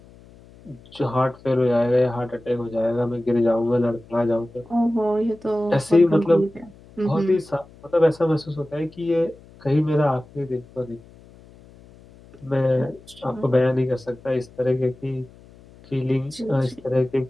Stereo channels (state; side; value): noise; left; hum, 24 dB below the sound